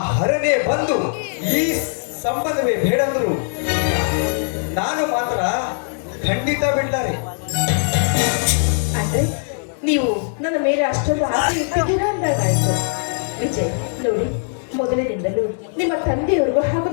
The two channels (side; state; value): right; silent; digital silence